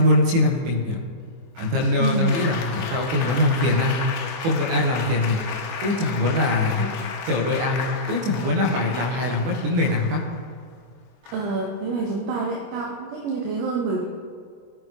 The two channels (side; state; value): left; late; 24 ms